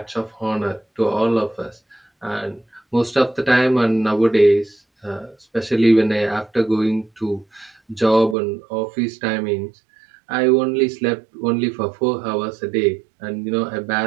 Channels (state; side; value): drops out; left; at 8.3 s